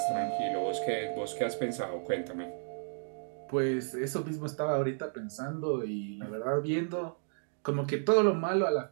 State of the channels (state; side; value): silent; left; digital silence